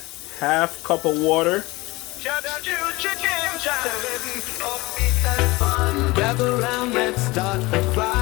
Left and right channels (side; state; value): right; quieter; 22.0 dB